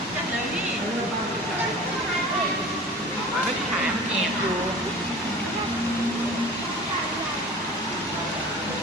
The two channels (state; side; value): normal; both; correlation 0.40